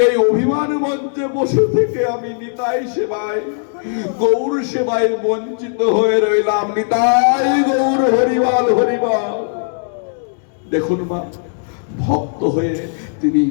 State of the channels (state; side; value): silent; right; 68 dB below the other